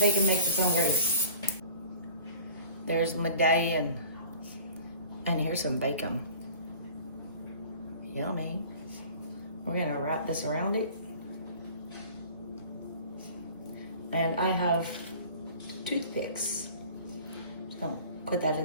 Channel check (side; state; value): both; inverted; correlation -0.43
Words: makes its own grease. There's medallion. And here's some bacon. Yummy. We're gonna wrap this around it. And I have toothpicks. Just gonna put that